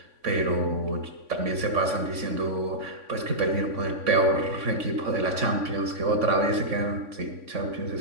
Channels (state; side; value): late; left; 3.5 ms